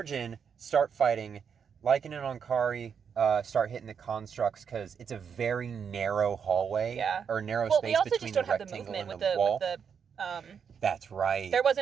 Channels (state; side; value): quieter; left; 7.0 dB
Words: in, start fighting. Lycan and Ankari start hitting the constructs because it's a very narrow hallway. Yeah. Or narrow Well, space we also between just don't the have the rectangle movement and with the wall. the That's right. there